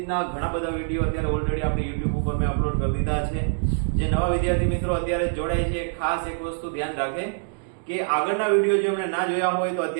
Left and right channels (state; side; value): silent; left; digital silence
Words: ઘણા બધા વિડીયો અત્યારે ઓલરેડી આપણે YouTube ઉપર મેં અપલોડ કરી દીધા છે. જે નવા વિદ્યાર્થી મિત્રો અત્યારે જોડાય છે, ખાસ એક વસ્તુ ધ્યાન રાખે કે આગળના વિડીયો જો એમણે ના જોયા હોય તો